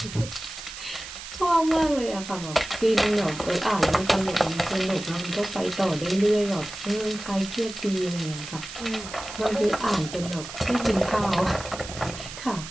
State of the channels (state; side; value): noise; right; hiss, 11 dB below the sound